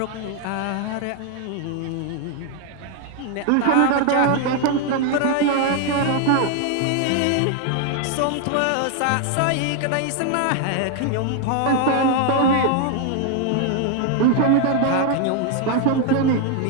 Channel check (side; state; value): both; different; correlation 0.00